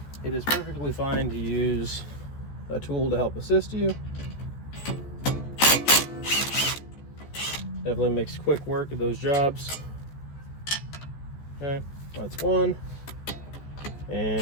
it is perfectly fine to use a tool to help assist you. Definitely makes quick work of those jobs. Okay, that's one.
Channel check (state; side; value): late; right; 14 ms